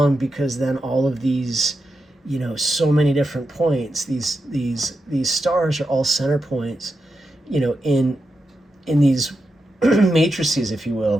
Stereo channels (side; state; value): both; normal; correlation 0.87